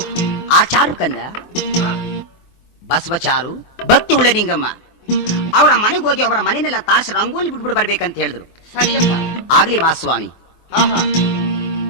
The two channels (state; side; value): late; right; 24 ms